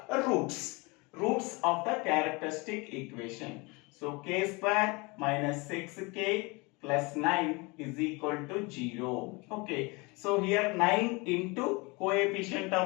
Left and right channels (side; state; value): right; quieter; 26.9 dB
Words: roots of the characteristic equation. So k square minus 6k plus 9 is equal to 0. Okay. So here 9 into coefficient